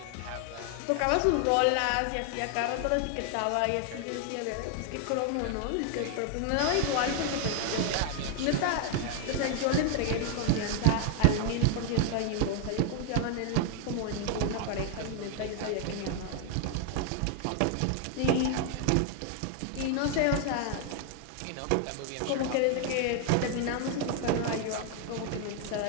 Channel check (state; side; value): different; both; correlation 0.00